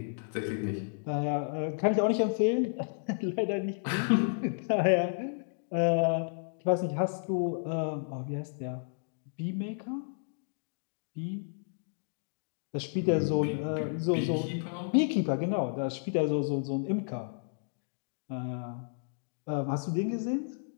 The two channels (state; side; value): silent; right; digital silence